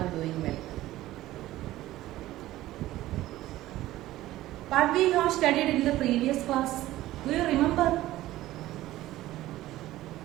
doing well. What we have studied in the previous class, do you remember?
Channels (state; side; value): quieter; left; 15.7 dB